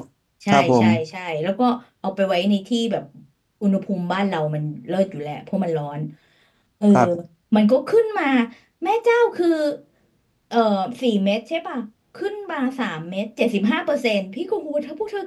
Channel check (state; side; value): identical; both; correlation 1.00